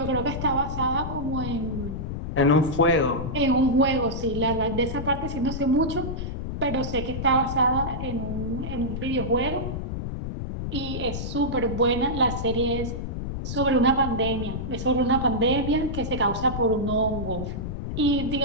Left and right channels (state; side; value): noise; left; rumble, 5 dB below the sound